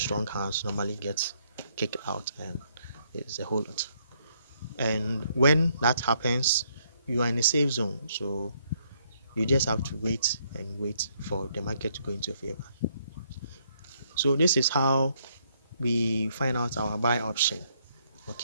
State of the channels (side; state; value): both; inverted; correlation -0.71